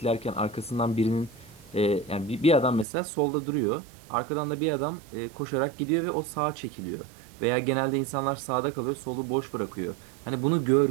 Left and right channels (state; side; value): drops out; left; at 2.9 s